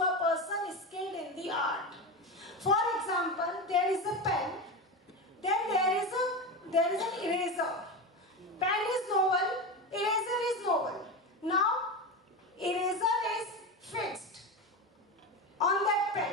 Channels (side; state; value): both; normal; correlation 0.20